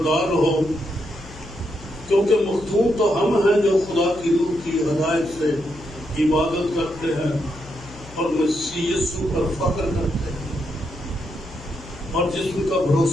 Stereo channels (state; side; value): noise; left; hum, 18 dB below the sound